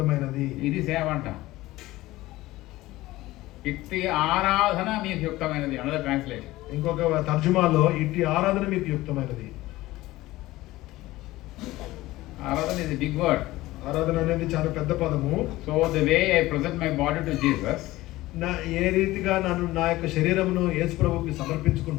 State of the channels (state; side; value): quieter; right; 17.8 dB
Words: ఇది సేవ అంట. ఇట్టి ఆరాధన మీకు యుక్తమైనది. Another translation. ఇంకొక తర్జుమాలో ఇట్టి ఆరాధన మీకు యుక్తమైనది. ఆరాధన ఇస్ బిగ్ వర్డ్. ఆరాధన అనేది చాలా పెద్ద పదము. So the way I present my body to Jesus, ఏ రీతిగా నన్ను నా యొక్క శరీరమును యేసు ప్రభువుకి